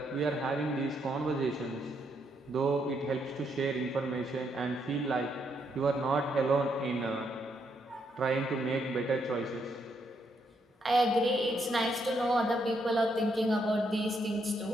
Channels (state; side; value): normal; both; correlation 0.76